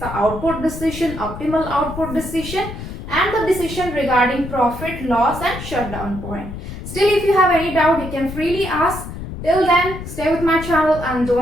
output decision, optimal output decision and the decision regarding profit, loss and shutdown point. Still, if you have any doubt, you can freely ask. Till then, stay with my channel and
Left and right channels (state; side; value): noise; left; rumble, 10 dB below the sound